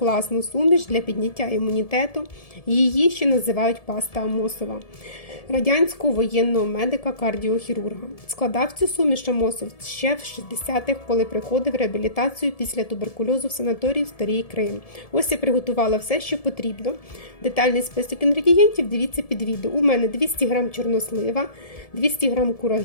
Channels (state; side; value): late; right; 1.7 ms